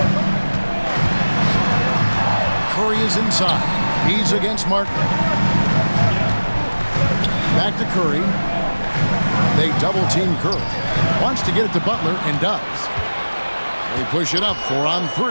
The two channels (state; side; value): inverted; both; correlation -1.00